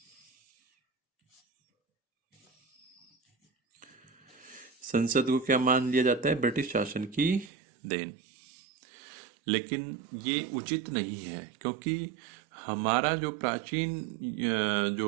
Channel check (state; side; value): drops out; left; at 7.5 s